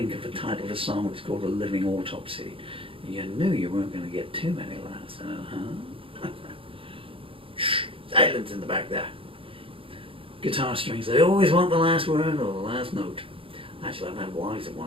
of the title of a song that's called A Living Autopsy. You knew you weren't going to get too many laughs, huh? Shh, silence in the back there. Guitar strings, they always want the last word or the last note. Actually, I've had wives that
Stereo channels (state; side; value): late; left; 0.26 ms